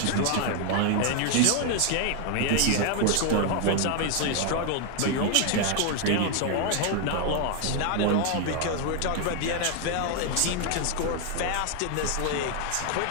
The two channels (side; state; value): both; different; correlation 0.00